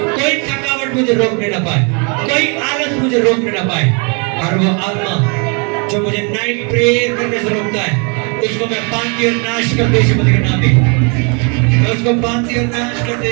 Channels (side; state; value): left; quieter; 35.0 dB